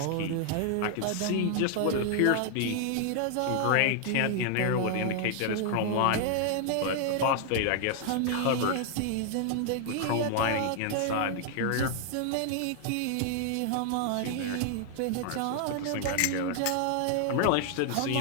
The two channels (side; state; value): both; different; correlation 0.00